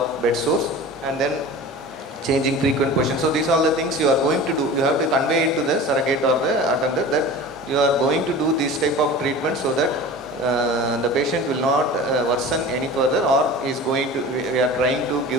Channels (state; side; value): normal; both; correlation 0.36